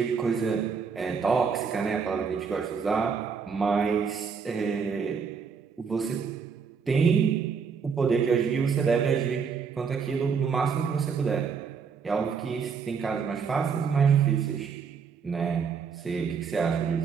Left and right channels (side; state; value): left; quieter; 6.0 dB